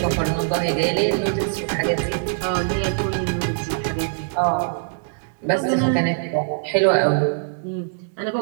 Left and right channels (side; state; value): left; silent; digital silence